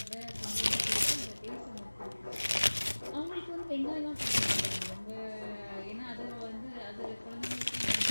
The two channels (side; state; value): both; inverted; correlation -1.00